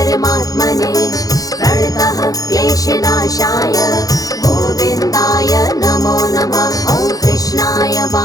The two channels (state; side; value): late; right; 0.17 ms